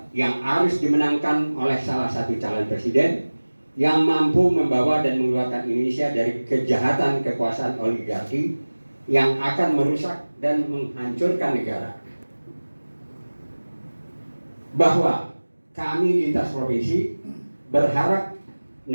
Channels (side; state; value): both; inverted; correlation -1.00